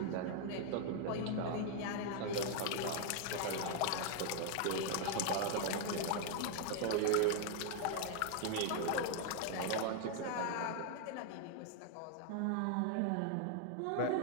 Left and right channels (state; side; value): different; both; correlation 0.00